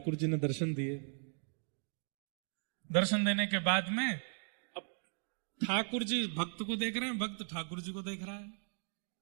जी ने दर्शन दिए। दर्शन देने के बाद में अब ठाकुर जी भक्त को देख रहे हैं, भक्त ठाकुर जी को देख रहा है।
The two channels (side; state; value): left; silent; 53 dB below the other